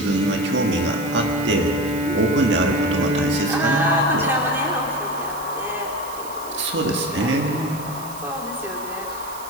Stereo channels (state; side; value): noise; right; hiss, 16 dB below the sound